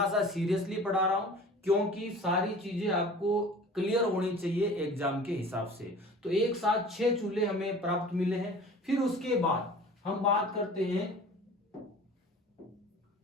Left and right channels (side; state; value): both; normal; correlation 0.43